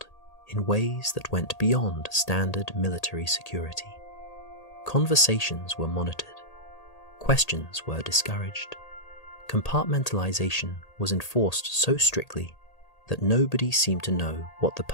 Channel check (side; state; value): right; late; 1.8 ms